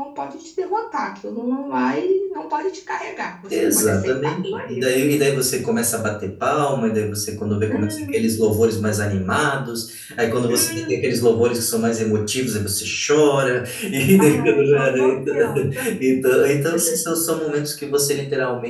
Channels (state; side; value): identical; both; correlation 1.00